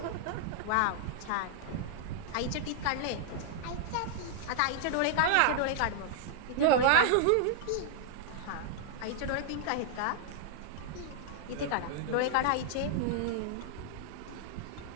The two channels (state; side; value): different; both; correlation -0.01